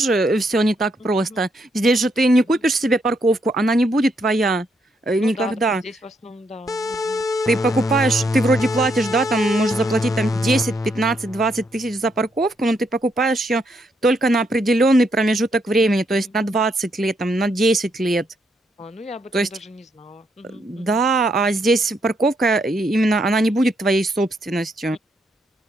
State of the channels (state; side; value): normal; both; correlation 0.76